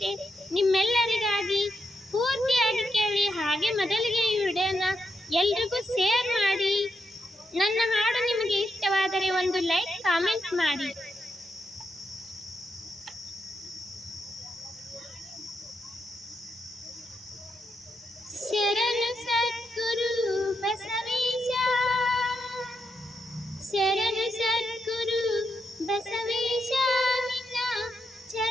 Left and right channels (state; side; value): normal; both; correlation 0.82